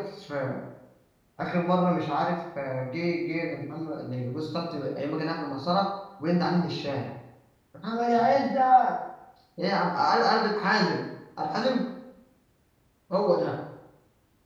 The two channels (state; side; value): identical; both; correlation 1.00